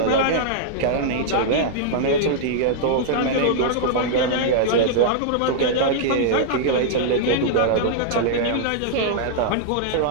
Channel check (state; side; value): different; both; correlation -0.01